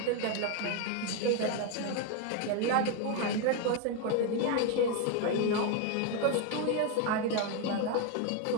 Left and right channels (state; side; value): different; both; correlation 0.01